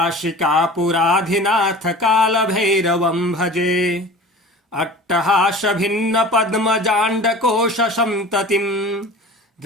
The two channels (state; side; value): normal; both; correlation 0.39